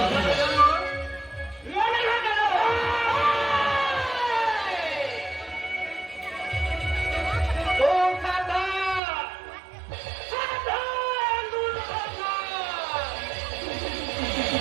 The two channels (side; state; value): left; drops out; at 9.0 s